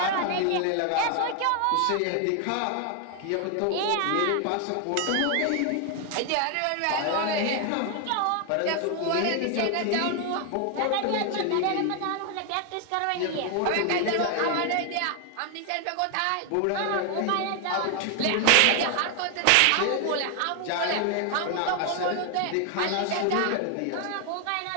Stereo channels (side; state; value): both; different; correlation 0.00